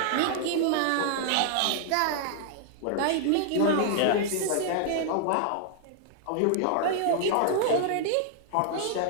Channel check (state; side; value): different; both; correlation -0.01